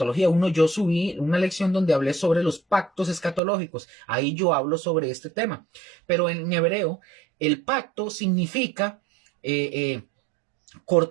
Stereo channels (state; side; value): drops out; left; at 3.4 s